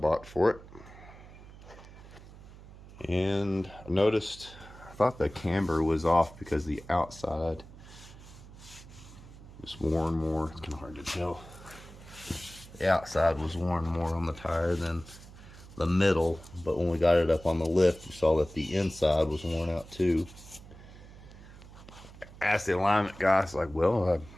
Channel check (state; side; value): noise; right; hum, 18 dB below the sound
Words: for it. And I noticed, I thought the camber was off because the outside was worn more. It's kind of hard to tell. The outside was worn more on the tire than the middle, but when we got it up on the lift, you saw that the inside was worn out too. Asked the alignment guy, I was like, well,